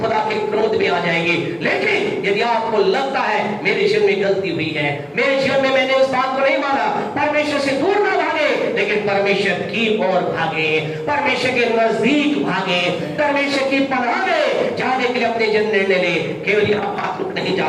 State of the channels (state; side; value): identical; both; correlation 1.00